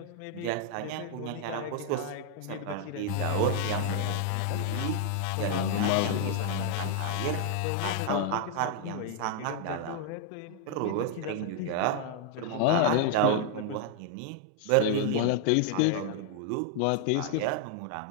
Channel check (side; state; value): both; different; correlation 0.00